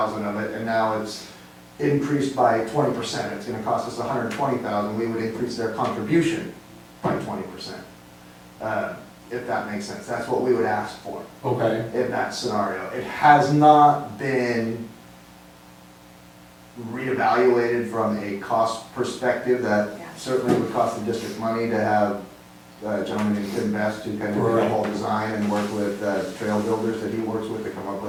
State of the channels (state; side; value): identical; both; correlation 1.00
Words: of it, and now it's increased by 20%, it's gonna cost us 120,000, we would increase their contribution by 20%. If that makes sense, that's what we would ask for Okay. in that scenario. It has not been reevaluated from a cost perspective. That Yeah. certainly would cost the district money to have a gentleman named Tim Best to kind of do the Right. whole design and work with trail builders that he works with to come up